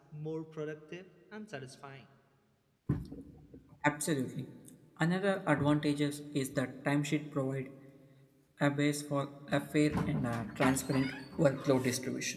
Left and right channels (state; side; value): identical; both; correlation 1.00